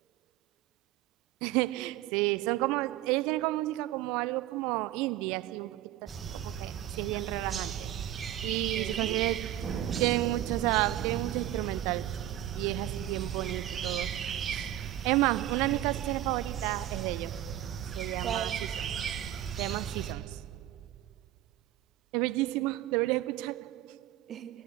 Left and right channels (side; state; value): left; quieter; 13.3 dB